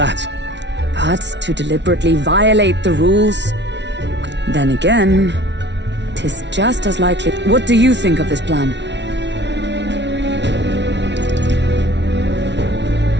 But to deliberately violate the rules? Then again, 'tis just as likely. What do you think of this plan?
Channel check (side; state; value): left; late; 0.51 ms